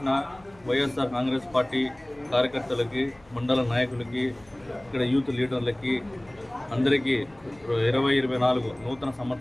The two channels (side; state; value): left; noise; hum, 28 dB below the sound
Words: వైఎస్ఆర్ కాంగ్రెస్ పార్టీ కార్యకర్తలకి, మండల నాయకులకి, ఇక్కడ యూత్ లీడర్లకి అందరికీ 2024 నూతన